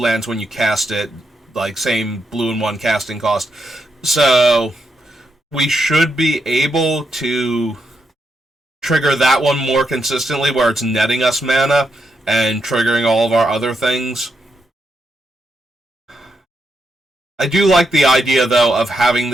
when you cast it. Like, same blue and 1 casting cost. So we should be able to trigger that one more consistently, where it's netting us mana and triggering all of our other things. I do like the idea, though, of having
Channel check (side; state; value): both; normal; correlation 0.82